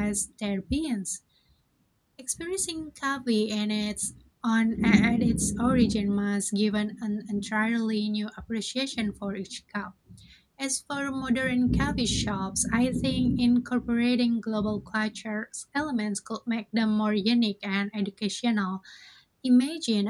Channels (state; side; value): identical; both; correlation 1.00